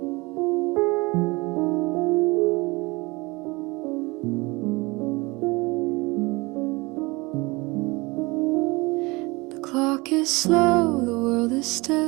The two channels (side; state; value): left; quieter; 24.4 dB